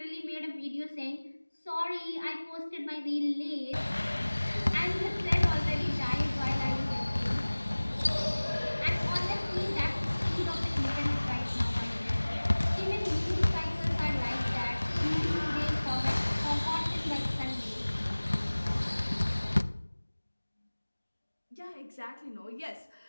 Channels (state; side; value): inverted; both; correlation -1.00